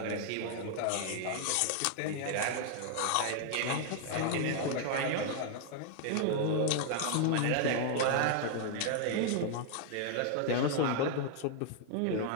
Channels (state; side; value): different; both; correlation 0.00